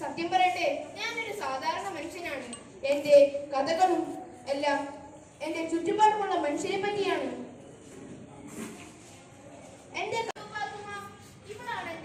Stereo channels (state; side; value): identical; both; correlation 1.00